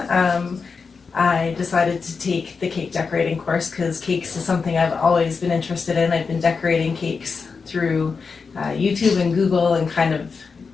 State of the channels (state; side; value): quieter; right; 5.1 dB